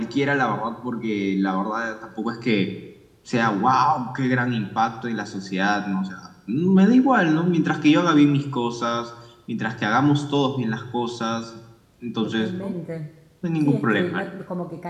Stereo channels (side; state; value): both; identical; correlation 1.00